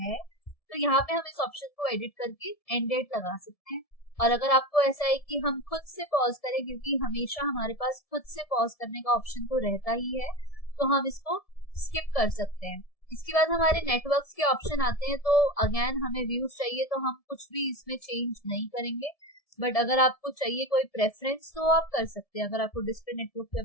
है तो यहाँ पे हम इस ऑप्शन को एडिट करके एंड डेट लगा सकते हैं। और अगर आपको ऐसा है कि हम खुद से पॉज करें, क्योंकि हमेशा हमारे पास खुद से पॉज करने का ऑप्शन तो रहता ही है, तो हम इसको स्किप कर सकते हैं। इसके बाद हमारे नेटवर्क्स के ऑप्शन आते हैं। तो अगेन हमें व्यूज चाहिए तो हम कुछ भी इसमें चेंज नहीं करेंगे, बट अगर आपको चाहिए कोई प्रेफरेंस तो आप कर सकते हैं। अगर आपको डिस्प्ले नेटवर्क पे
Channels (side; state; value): right; late; 1.7 ms